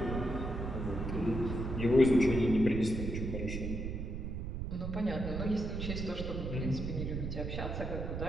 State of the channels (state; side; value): noise; right; rumble, 4 dB below the sound